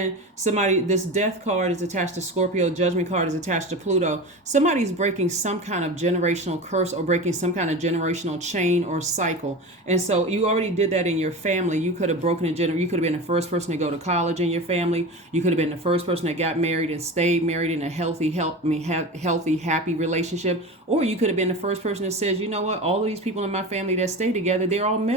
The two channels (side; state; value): both; normal; correlation 0.29